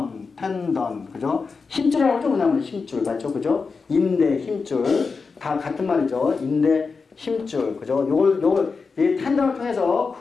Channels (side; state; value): right; quieter; 4.8 dB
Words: 그죠? 힘줄이라고 하죠? 뭐냐면 힘줄, 맞죠? 그죠? 인대, 힘줄. 다 같은 말이죠. 인대, 힘줄, 그죠? 이 텐던을 통해서